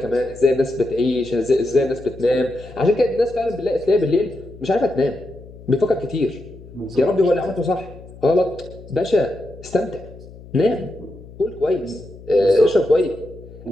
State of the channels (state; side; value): noise; left; hum, 18 dB below the sound